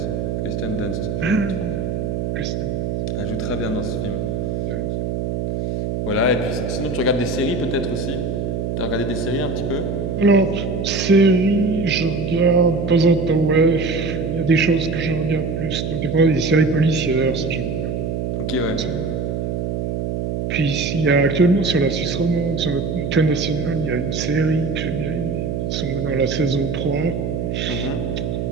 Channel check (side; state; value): right; noise; hum, 2 dB below the sound